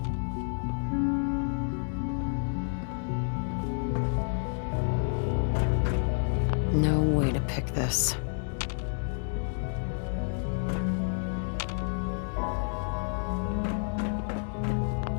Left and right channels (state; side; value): silent; right; digital silence